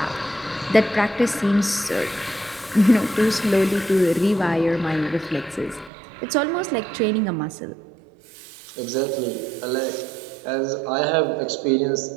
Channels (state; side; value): drops out; left; at 5.9 s